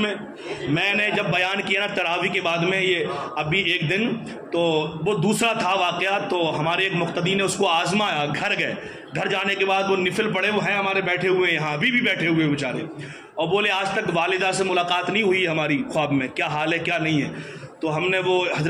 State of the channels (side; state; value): both; identical; correlation 1.00